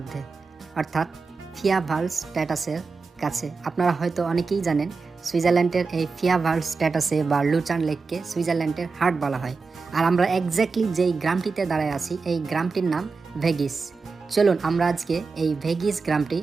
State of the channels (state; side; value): quieter; left; 4.5 dB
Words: অর্থাৎ ফিয়াভালস্ট্যাটাসের কাছে। আপনারা হয়তো অনেকেই জানেন সুইজারল্যান্ডের এই ফিয়াভালস্ট্যাটাসে বা লুচার্ন লেককে সুইজারল্যান্ডের হার্ট বলা হয়। আর আমরা এক্স্যাক্টলি যেই গ্রামটিতে দাঁড়ায় আছি এই গ্রামটির নাম ভেগিস। চলুন আমরা আজকে এই ভেগিস গ্রামটি